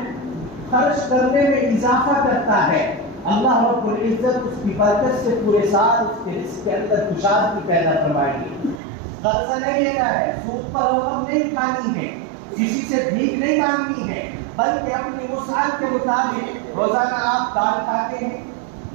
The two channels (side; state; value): left; drops out; at 8.8 s